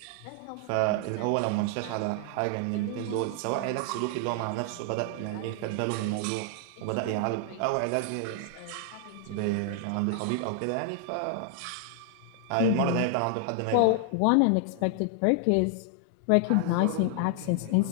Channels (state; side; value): different; both; correlation 0.00